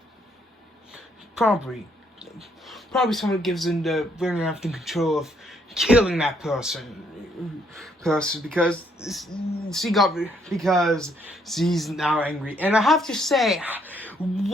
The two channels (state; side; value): normal; both; correlation 0.70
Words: Probably someone gives into William Afton control of killing that person because she's now angry. And I have to say,